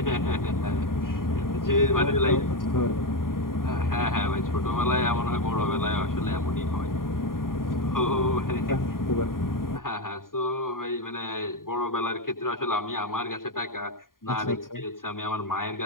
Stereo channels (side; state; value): right; late; 0.91 ms